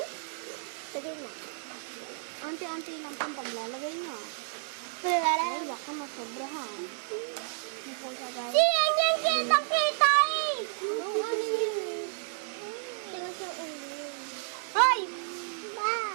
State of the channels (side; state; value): left; silent; 57 dB below the other